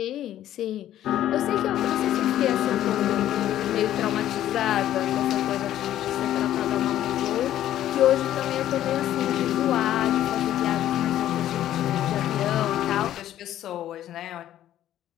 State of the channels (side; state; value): right; quieter; 12.3 dB